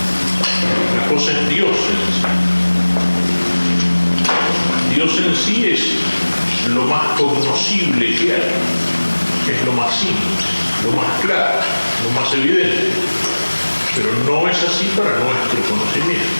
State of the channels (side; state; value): both; inverted; correlation -1.00